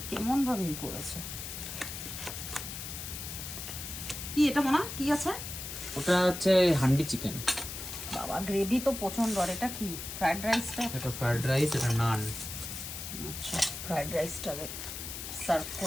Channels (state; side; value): noise; left; hiss, 8 dB below the sound